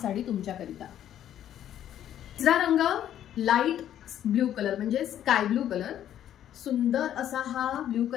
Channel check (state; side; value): quieter; right; 11.0 dB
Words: तुमच्याकरिता. तिसरा रंग लाईट ब्ल्यू कलर म्हणजे स्काय ब्ल्यू कलर. सुंदर असा हा ब्ल्यू